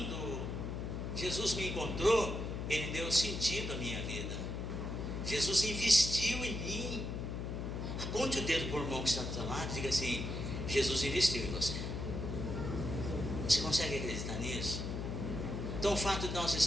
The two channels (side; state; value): left; noise; hum, 4 dB below the sound